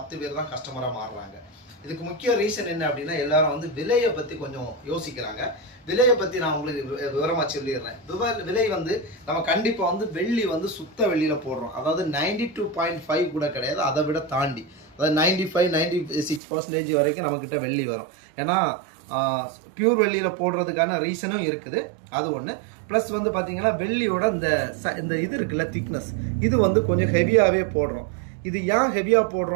பேர் தான் கஸ்டமராக மாறுறாங்க. இதுக்கு முக்கிய ரீசன் என்ன அப்படின்னா, எல்லாரும் வந்து விலையை பற்றி கொஞ்சம் யோசிக்கிறாங்க. விலையை பற்றி நான் உங்களுக்கு விவரமாக சொல்லிடுறேன். விலை வந்து நம்ம கண்டிப்பாக வந்து வெள்ளி வந்து சுத்த வெள்ளியில் போடுறோம். அதாவது 92.5 கூட கிடையாது, அதை விட தாண்டி, அதாவது 95-96% வரைக்கும் நம்மக்கிட்ட வெள்ளி வரும். ஏன்னா பியூர் வெள்ளியில் போடுறதுக்கான ரீசனும் இருக்குது, அது ஒன்று. ப்ளஸ் வந்து பார்த்தீங்கன்னா வெள்ளியோட இந்த இது இருக்குல்ல, திக்னஸ், இது வந்து கொஞ்சம் ஹெவியாகவே போடுறோம். இது ஏன் ஹெவியாக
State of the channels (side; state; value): left; drops out; at 16.4 s